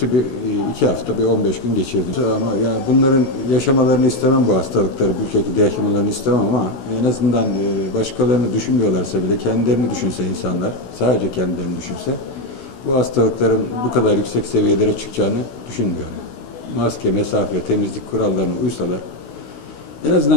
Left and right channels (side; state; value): right; late; 16 ms